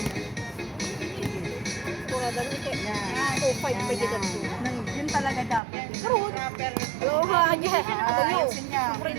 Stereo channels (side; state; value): left; drops out; at 5.6 s